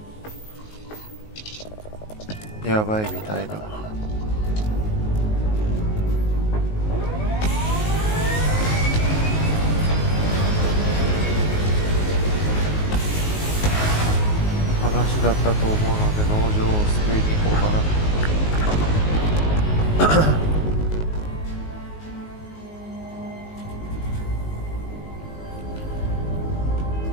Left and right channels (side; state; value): right; late; 19 ms